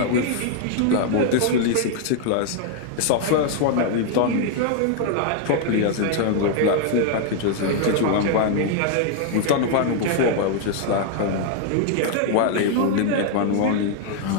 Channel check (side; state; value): both; different; correlation 0.00